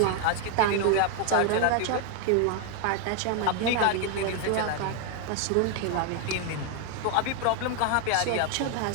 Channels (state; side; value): different; both; correlation 0.01